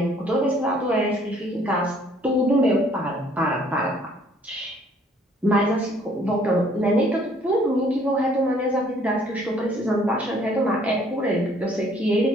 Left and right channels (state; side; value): normal; both; correlation 0.60